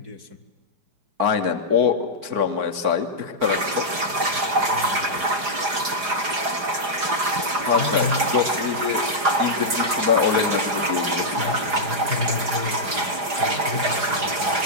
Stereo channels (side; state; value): left; late; 4.9 ms